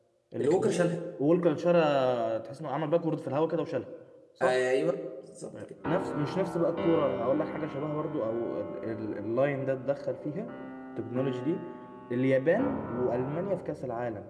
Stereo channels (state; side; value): identical; both; correlation 1.00